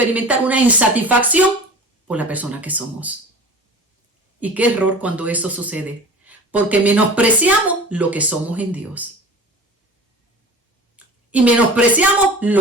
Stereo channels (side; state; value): both; normal; correlation 0.38